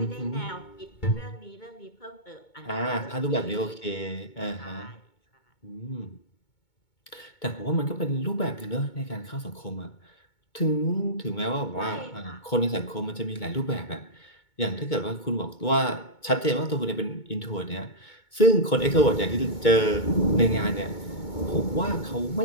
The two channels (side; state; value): right; late; 2.2 ms